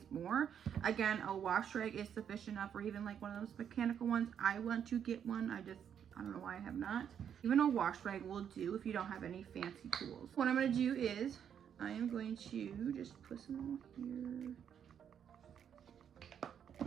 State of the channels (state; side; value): quieter; left; 8.5 dB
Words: more. Again, a wash rag is sufficient enough, or even like one of those mechanical ones. I want to get one. I don't know why I have not. Even a wash rag will do if you don't have any fancy tools. What I'm gonna do is I am going to just put some here.